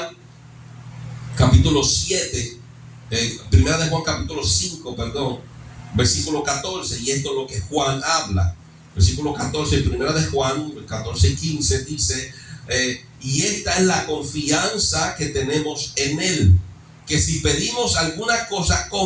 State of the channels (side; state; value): both; identical; correlation 1.00